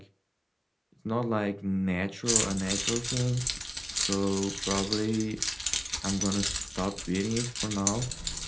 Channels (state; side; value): identical; both; correlation 1.00